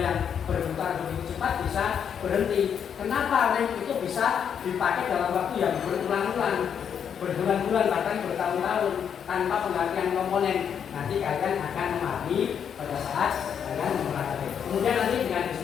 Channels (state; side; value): quieter; right; 7.9 dB